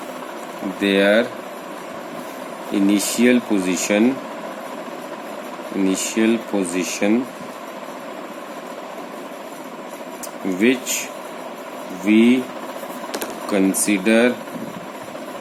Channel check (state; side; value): identical; both; correlation 1.00